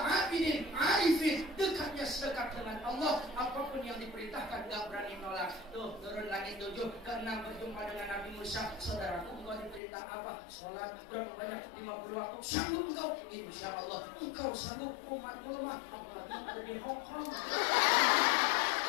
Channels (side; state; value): right; drops out; at 9.8 s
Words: abidin, arifin, dekatnya sedekat dengan Allah. Apapun yang diperintahkan gak berani nolak. Tuh, turun langit 7 ke 6 berjumpa dengan Nabi Musa. Saudaraku, engkau diperintah apa? Sholat berapa banyak? 50 waktu. Sanggup engkau? Insya Allah engkau sanggup. Umatku lemah, apalagi ada di Hong Kong.